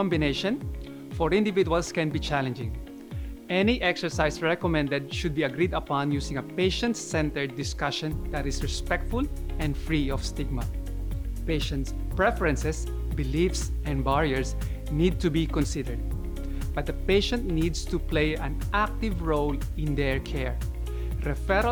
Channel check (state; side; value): identical; both; correlation 1.00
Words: for individuals can be challenging. Any exercise recommended should be agreed upon using a patient-centered discussion that is respectful and free of stigma. Patients' preferences, beliefs, and barriers need to be considered, but the patient needs to play an active role in their care.